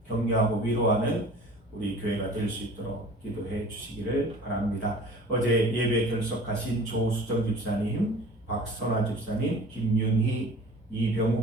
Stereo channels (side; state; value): both; normal; correlation 0.44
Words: 격려하고 위로하는 우리 교회가 될 수 있도록 기도해 주시기를 바랍니다. 어제 예배 결석하신 조수정 집사님, 박선화 집사님, 김윤희,